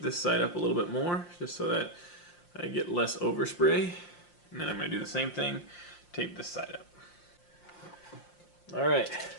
this side up a little bit more just so that I get less overspray. And then I'm going to do the same thing, tape this side up. Alright,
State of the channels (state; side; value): late; right; 5.7 ms